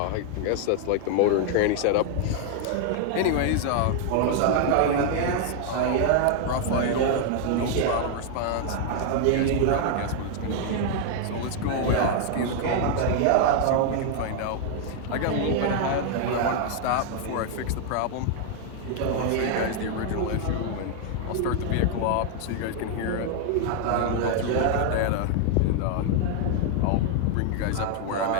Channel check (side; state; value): both; different; correlation 0.00